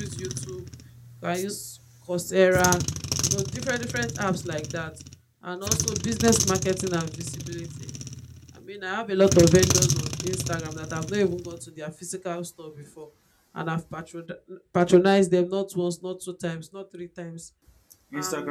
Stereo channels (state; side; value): identical; both; correlation 1.00